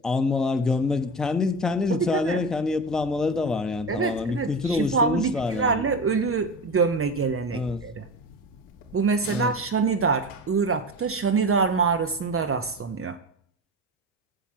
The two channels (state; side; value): normal; both; correlation 0.26